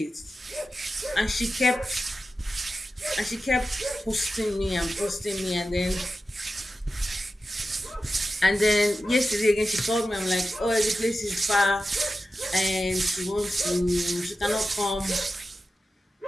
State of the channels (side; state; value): both; normal; correlation 0.92